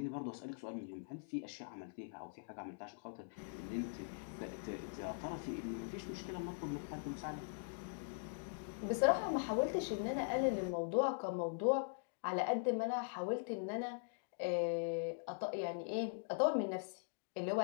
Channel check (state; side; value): silent; right; digital silence